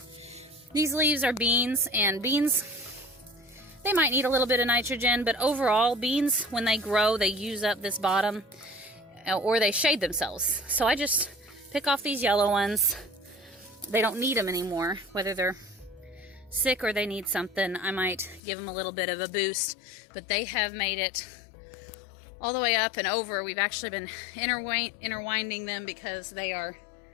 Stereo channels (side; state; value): right; drops out; at 18.4 s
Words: These leaves are beans, and beans, they might need a little bit of nitrogen, but overall, beans, when they grow, they use up this bottom, or they shade themselves. So I just pick off these yellow ones. They don't need them anymore, whether they're sick or they need something. I might give them a little bit of a boost, but they have made it all the way up and over. We've actually been interwinding them because they're